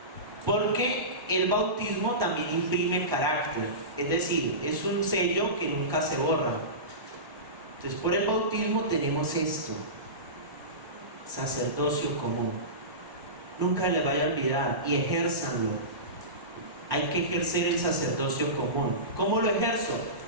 porque el bautismo también imprime carácter, es decir, es un sello que nunca se borra. Entonces, por el bautismo tenemos esto: sacerdocio común. Nunca les vaya a olvidar y ejérzanlo. Hay que ejercer el sacerdocio común. ¿Cómo lo ejerzo?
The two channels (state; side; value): late; left; 1.1 ms